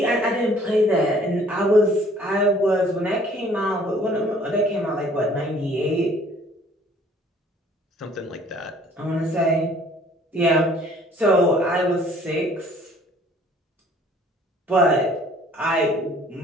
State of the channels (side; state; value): both; normal; correlation 0.56